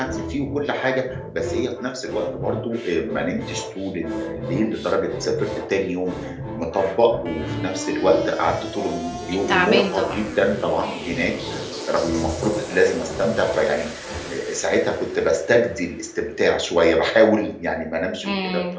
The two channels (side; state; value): both; identical; correlation 1.00